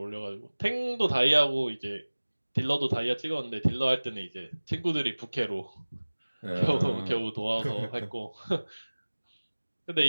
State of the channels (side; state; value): both; inverted; correlation -1.00